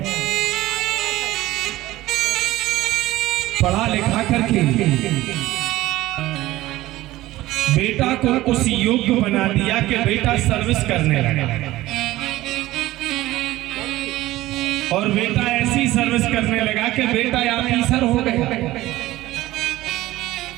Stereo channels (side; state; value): left; quieter; 16.8 dB